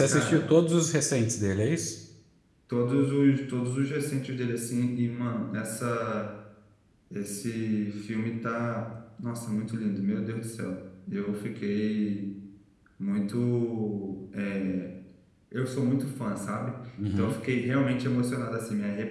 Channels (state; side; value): identical; both; correlation 1.00